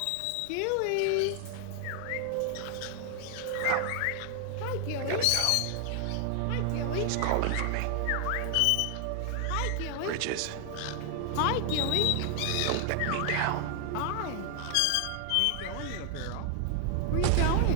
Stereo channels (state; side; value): different; both; correlation 0.00